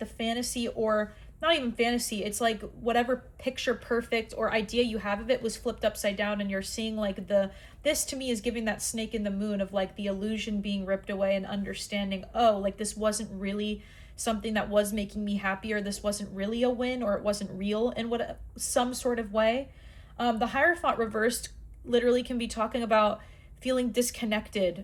fantasy, or not even fantasy, it's like whatever picture perfect or idea you have of it was flipped upside down, and you're seeing like this to me is giving that snake in the moon of like the illusion being ripped away and understanding, oh, like this wasn't really something that was making me happy, or this wasn't really a win, or it wasn't real in some sort of way. The Hierophant reversed literally can be talking about feeling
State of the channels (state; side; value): identical; both; correlation 1.00